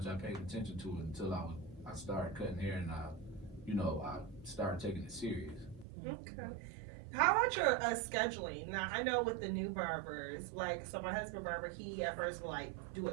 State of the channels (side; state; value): left; drops out; at 5.9 s